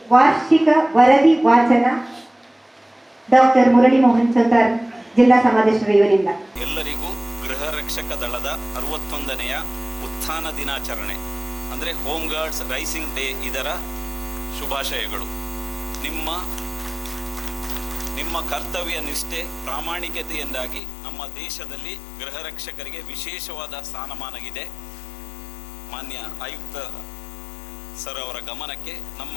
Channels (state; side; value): drops out; right; at 20.8 s